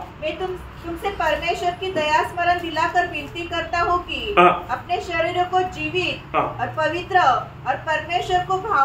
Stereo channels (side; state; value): both; identical; correlation 1.00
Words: मैं तुमसे परमेश्वर की दया स्मरण दिलाकर विनती करता हूँ कि अपने शरीरों को जीवित और पवित्र और परमेश्वर को